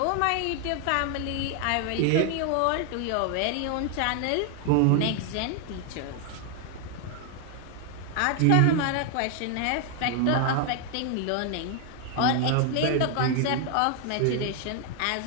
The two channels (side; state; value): both; different; correlation 0.00